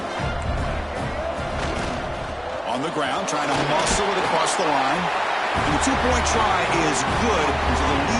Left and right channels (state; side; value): identical; both; correlation 1.00